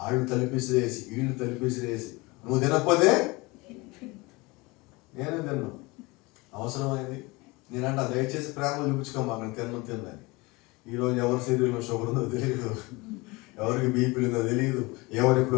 ఆళ్ళు తలిపిసిరేసి వీళ్ళు తలిపిసిరేసి నువ్వు తినకపోతే నేనే తిన్నాను. అవసరమైంది నేనంట దయచేసి ప్రేమ చూపించుకోమా నేను తిందని. ఈరోజు ఎవరి శరీరంలో షుగర్ ఉందో తెలియదు, ఎవరికి బీపీలు ఉందో తెలియదు, ఎవరు ఇప్పుడు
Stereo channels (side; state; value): right; quieter; 24.2 dB